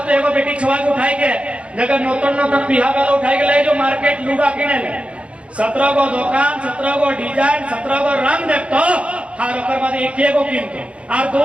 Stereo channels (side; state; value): left; late; 0.061 ms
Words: तो एगो बेटी छुआ के उठाई के जगह नौतन बिहा वाला उठाई के ले जो मार्केट लूगा किने ले 17 गो दुकान 17 गो डिजाइन 17 गो रंग देखतो हर ओकर बाद एक गो किनतो और 2